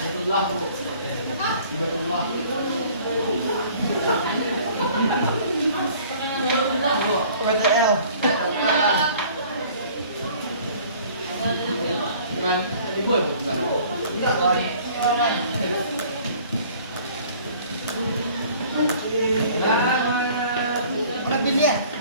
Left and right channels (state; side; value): inverted; both; correlation -0.52